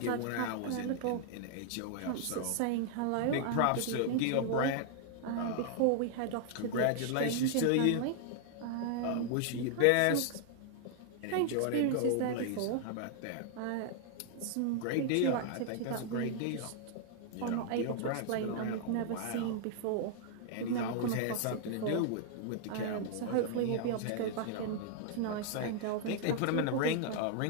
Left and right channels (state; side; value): different; both; correlation 0.00